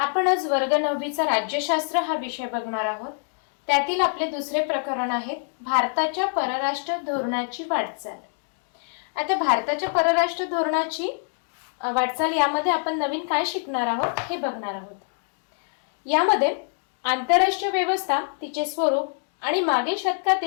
आज वर्ग 9चा राज्यशास्त्र हा विषय बघणार आहोत। त्यातील आपले दुसरे प्रकरण आहे भारताच्या परराष्ट्र धोरणाची वाटचाल। आता भारताच्या परराष्ट्र धोरणाची वाटचाल यामध्ये आपण नवीन काय शिकणार आहोत हे बघणार आहोत। यामध्ये आंतरराष्ट्रीय व्यवस्था, तिचे स्वरूप आणि मागील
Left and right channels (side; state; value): right; silent; digital silence